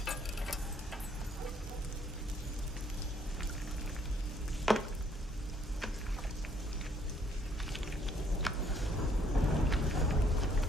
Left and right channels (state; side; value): normal; both; correlation 0.66